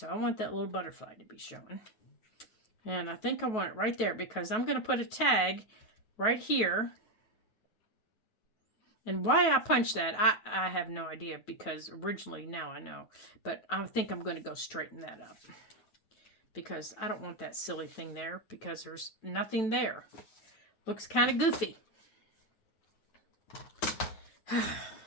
I want that little butterfly to be shown. And I think I want it right there because I'm going to put a tag right here. And why I punched that, I have no idea because originally, now I know. But I think I'm going to go straighten that up. Because I don't want that silly thing there because there's nothing there. Looks kind of goofy.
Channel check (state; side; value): late; right; 9.2 ms